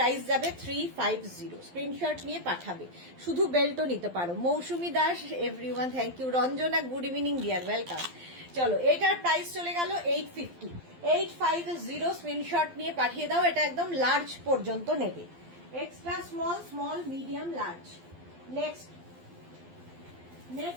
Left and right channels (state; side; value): late; left; 12 ms